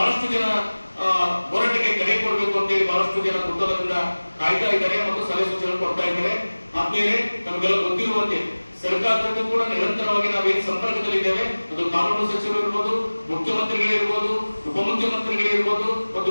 ಜನ ಹೋರಾಟಕ್ಕೆ ಕರೆ ಕೊಡಬೇಕು ಅಂತೇಳಿ ಬಹಳಷ್ಟು ಜನ ಕುತೂಹಲದಿಂದ ಕಾಯ್ತಾ ಇದ್ದಾರೆ ಮತ್ತು ಸಲಹೆ ಸೂಚನೆ ಕೊಡ್ತಾ ಇದ್ದಾರೆ. ಆದ್ಮೇಲೆ ನಮಗೆಲ್ಲ ಗೊತ್ತಿರುವಂತೆ ಸರ್ಕಾರಕ್ಕೂ ಕೂಡ ನಿರಂತರವಾಗಿ ನಾವೇನು ಸಂಪರ್ಕದಲ್ಲಿದ್ದೇವೆ. ಅದು ಕಾನೂನು ಸಚಿವರು ಇರ್ಬೋದು, ಮುಖ್ಯಮಂತ್ರಿಗಳಿರ್ಬೋದು, ಉಪಮುಖ್ಯಮಂತ್ರಿಗಳಿರ್ಬೋದು, ಮತ್ತು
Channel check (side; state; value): both; inverted; correlation -1.00